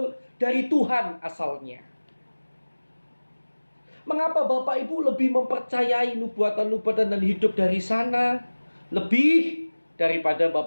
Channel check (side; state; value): both; inverted; correlation -1.00